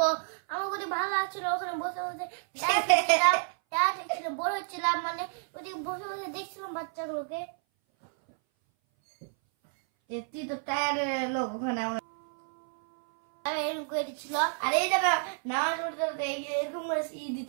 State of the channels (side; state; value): left; silent; 58 dB below the other